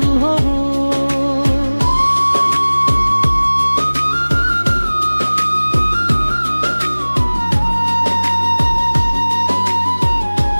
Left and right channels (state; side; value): inverted; both; correlation -1.00